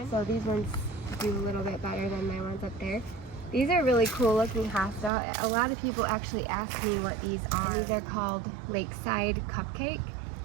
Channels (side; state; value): left; drops out; at 5.1 s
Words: So these ones do a little bit better than my ones up there. These are really cool looking hosta. A lot of people actually ask me what these are. These are called Lakeside Cupcake.